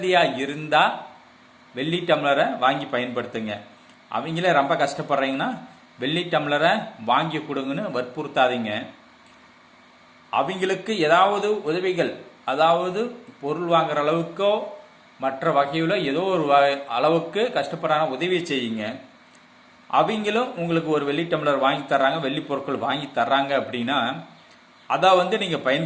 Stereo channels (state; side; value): identical; both; correlation 1.00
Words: இருந்தால் வெள்ளி டம்ளரை வாங்கி பயன்படுத்துங்க. அவங்களே ரொம்ப கஷ்டப்படுறீங்கன்னா வெள்ளி டம்ளரை வாங்கி கொடுங்கன்னு வற்புறுத்தாதீங்க. அவங்களுக்கு ஏதாவது உதவிகள், அதாவது பொருள் வாங்குற அளவுக்கோ மற்ற வகையில் ஏதோ ஒரு அளவுக்கு கஷ்டப்படுறாங்க, உதவி செய்யுங்க. அவங்களும் உங்களுக்கு ஒரு வெள்ளி டம்ளர் வாங்கி தர்றாங்க, வெள்ளி பொருட்கள் வாங்கி தர்றாங்க அப்படின்னா அதை நீங்கள்